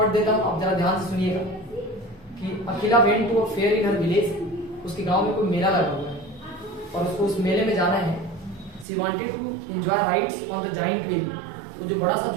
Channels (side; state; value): left; drops out; at 8.8 s